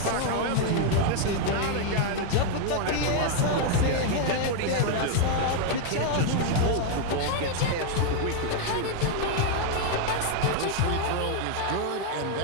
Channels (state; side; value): different; both; correlation 0.00